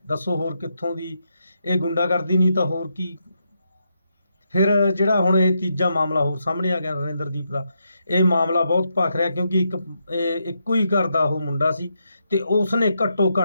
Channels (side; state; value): both; inverted; correlation -0.81